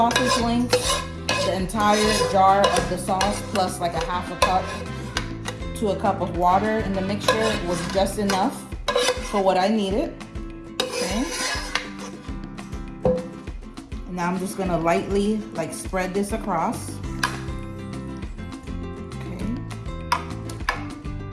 links, the entire jar of the sauce, plus like a half a cup to a cup of water in the mixture was just enough for what I needed. Okay. Now I'm just gonna lightly like spread this across.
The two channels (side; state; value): both; identical; correlation 1.00